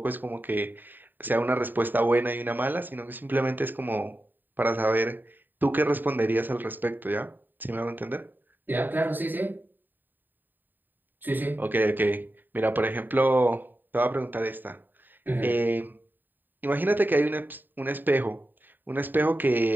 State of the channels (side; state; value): left; late; 0.091 ms